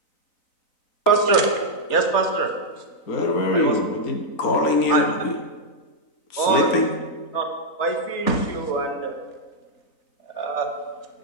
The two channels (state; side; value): late; right; 3.9 ms